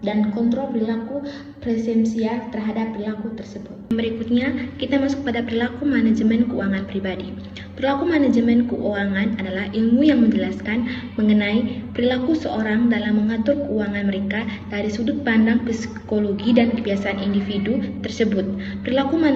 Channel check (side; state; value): both; identical; correlation 1.00